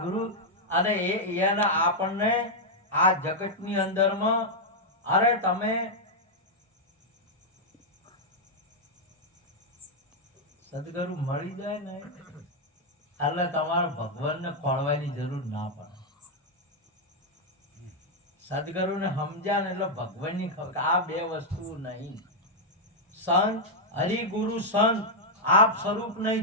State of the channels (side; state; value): both; normal; correlation -0.02